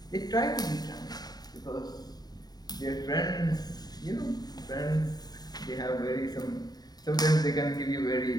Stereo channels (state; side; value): late; right; 0.19 ms